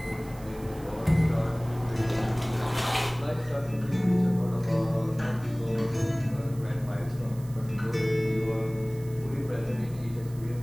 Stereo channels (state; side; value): noise; right; hiss, 22 dB below the sound